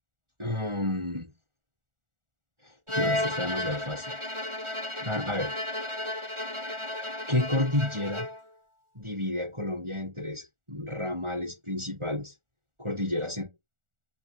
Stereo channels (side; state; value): left; late; 1.4 ms